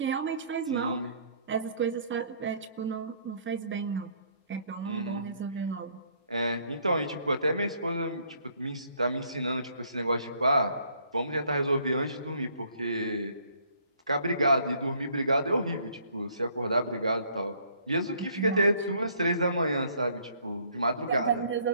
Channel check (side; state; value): both; inverted; correlation -0.63